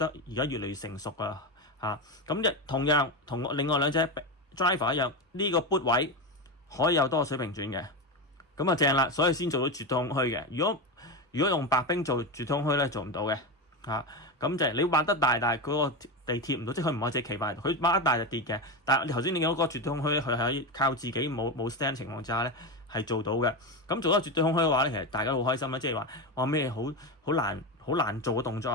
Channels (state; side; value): normal; both; correlation 0.16